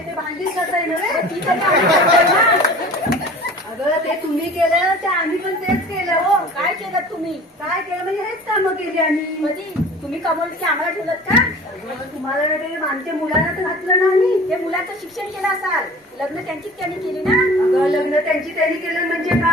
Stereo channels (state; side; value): normal; both; correlation 0.42